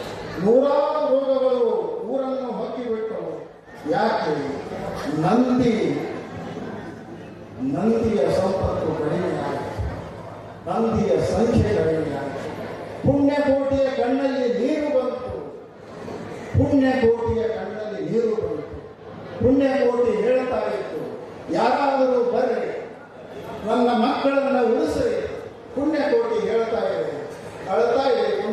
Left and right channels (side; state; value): both; identical; correlation 1.00